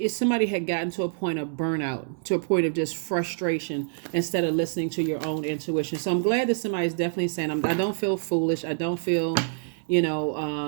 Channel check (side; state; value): left; silent; digital silence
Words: somebody had gotten to a point of burnout, to a point of just frustration, instead of listening to your own intuition. So I'm glad that somebody's definitely saying, I don't feel foolish. I don't feel,